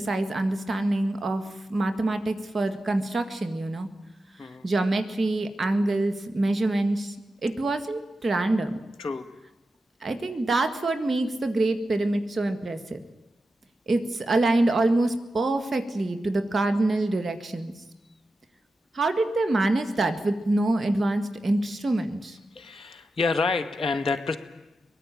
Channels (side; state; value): both; normal; correlation 0.91